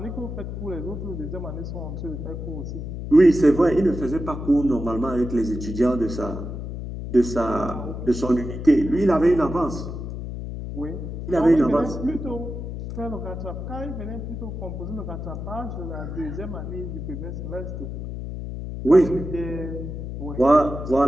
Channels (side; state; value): left; noise; hum, 7 dB below the sound